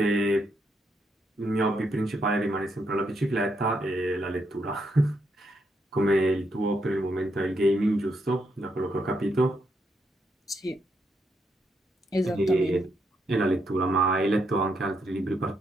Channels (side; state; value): both; normal; correlation 0.78